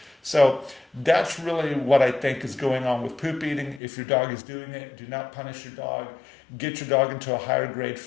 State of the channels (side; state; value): right; drops out; at 3.8 s